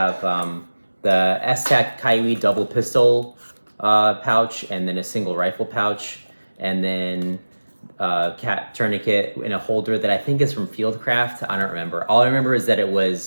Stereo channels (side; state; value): both; inverted; correlation -1.00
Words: the S-Tac Kaiwi double pistol pouch, and then a single rifle pouch, and then cat tourniquet in a holder that I think is from Fieldcraft. I don't remember. All I remember is that it